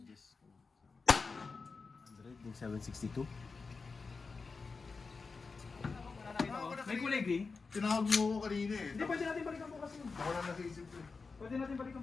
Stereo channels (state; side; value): quieter; right; 4.5 dB